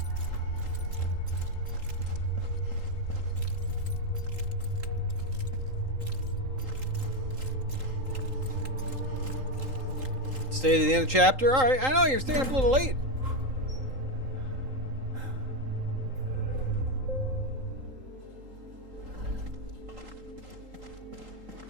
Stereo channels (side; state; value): left; late; 3.8 ms